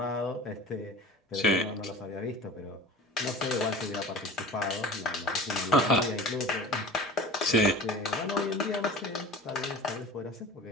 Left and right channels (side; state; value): both; normal; correlation 0.38